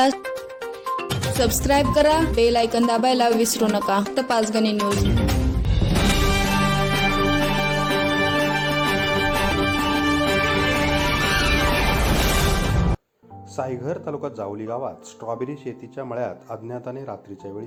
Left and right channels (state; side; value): identical; both; correlation 1.00